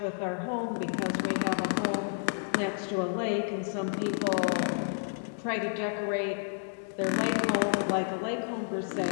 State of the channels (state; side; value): silent; right; digital silence